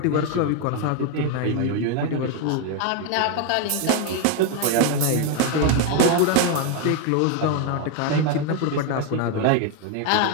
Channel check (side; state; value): both; different; correlation 0.01